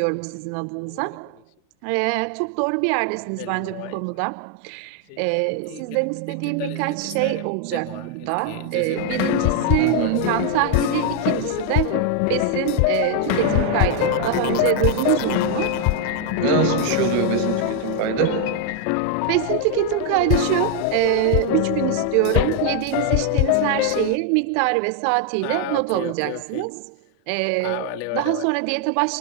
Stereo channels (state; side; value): different; both; correlation 0.00